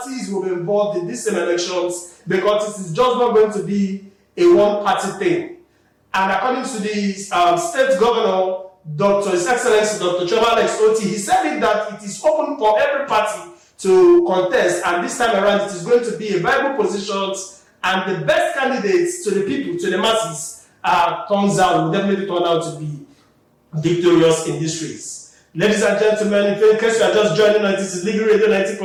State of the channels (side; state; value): both; identical; correlation 1.00